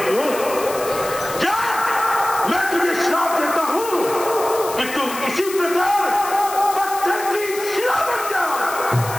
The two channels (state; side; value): noise; left; hiss, 11 dB below the sound